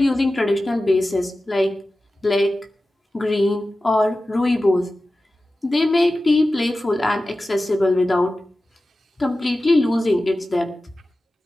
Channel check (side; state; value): both; normal; correlation 0.95